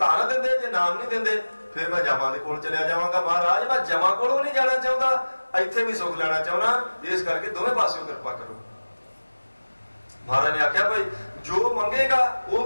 देंदे जे नाम नहीं देंदे फिर मैं जमा दे कोल चलिया जावांगा। महाराज मैं जमा कोलों नहीं जाना चाहता, इत्थे भी सुख लेना चाहना, इस करके दोवें पासों कृपा करो। महाराज ने आख्या भाई जो मंगेगा वो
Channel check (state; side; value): inverted; both; correlation -1.00